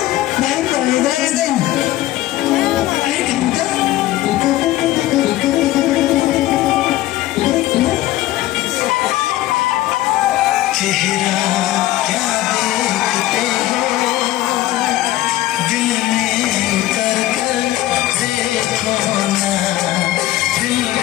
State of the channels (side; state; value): right; quieter; 15.6 dB